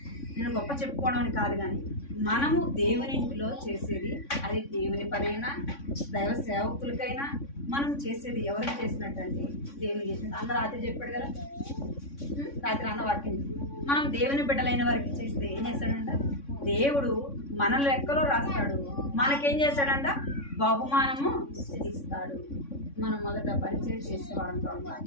నేను గొప్ప చెప్పుకోవడం అని కాదు, కానీ మనము దేవుని ఇంటిలో చేసేది అది దేవుని పనైనా దైవ సేవకులకైనా మనం చేసేది ఎవరికి చేసినట్టు అంటే దేవుని చేసినట్టు. అందరూ రాత్రి చెప్పాడు కదా, రాత్రి అన్న వాక్యం మనం దేవుని బిడ్డలైన వారికి చేస్తే ఏం చేస్తాడంట? దేవుడు మన లెక్కలో రాస్తాడు, మనకేం చేస్తాడంట? బహుమానము ఇస్తాడు. మనం మొదట పరిచయం చేసేవాళ్ళంతా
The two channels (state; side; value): late; right; 3.6 ms